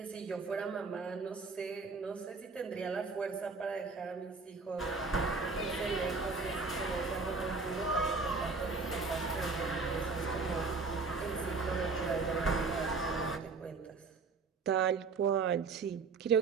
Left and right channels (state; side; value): quieter; left; 4.4 dB